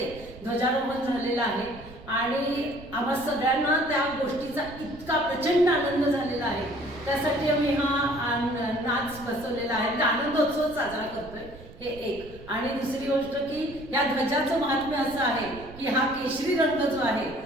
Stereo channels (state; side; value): noise; right; rumble, 18 dB below the sound